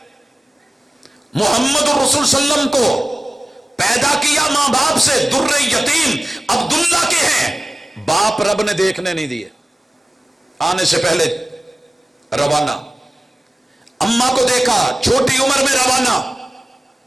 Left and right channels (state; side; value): normal; both; correlation 0.96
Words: محمد الرسول صلی اللہ علیہ وسلم کو پیدا کیا ماں باپ سے. در یتیم عبداللہ کے ہیں، باپ رب نے دیکھنے نہیں دیے، آنے سے پہلے روانہ. اماں کو دیکھا چھوٹی عمر میں روانہ.